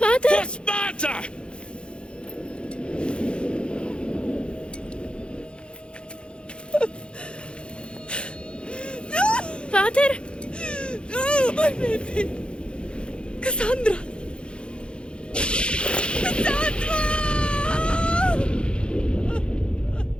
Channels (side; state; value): right; late; 0.055 ms